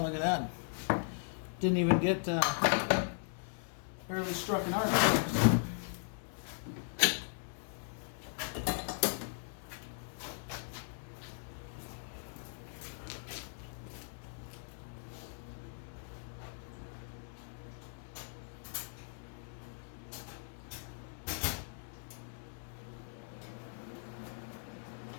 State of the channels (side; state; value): right; silent; digital silence